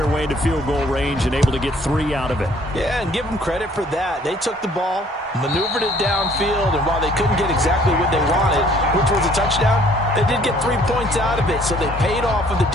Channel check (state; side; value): normal; both; correlation 0.59